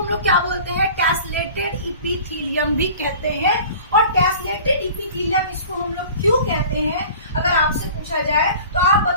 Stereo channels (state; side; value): inverted; both; correlation -0.43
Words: लोग क्या बोलते हैं, टेसलेटेड इपिथेलियम भी कहते हैं। और टेसलेटेड इपिथेलियम इसको हम लोग क्यों कहते हैं, अगर आपसे पूछा जाए तो आप